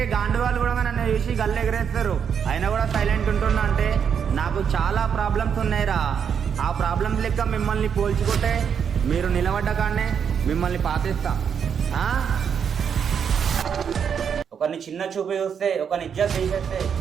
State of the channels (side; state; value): left; quieter; 7.4 dB